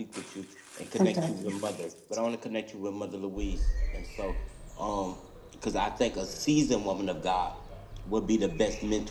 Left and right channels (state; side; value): identical; both; correlation 1.00